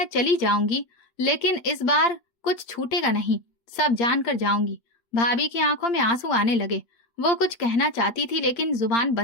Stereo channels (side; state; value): right; late; 8.2 ms